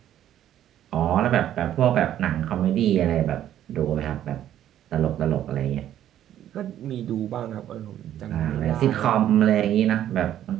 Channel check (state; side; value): quieter; left; 11.4 dB